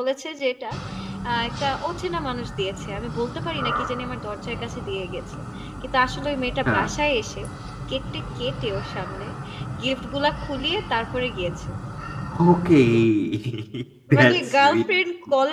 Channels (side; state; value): both; identical; correlation 1.00